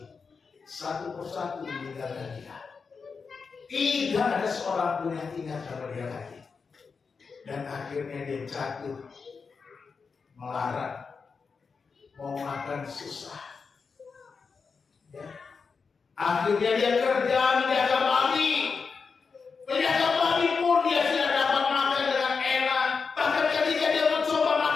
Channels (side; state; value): right; quieter; 5.2 dB